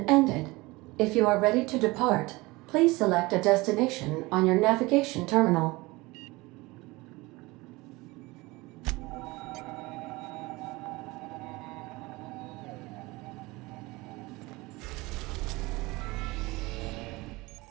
ended. If you are ready to depart, please select a destination on your navigation terminal.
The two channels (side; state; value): left; quieter; 22.3 dB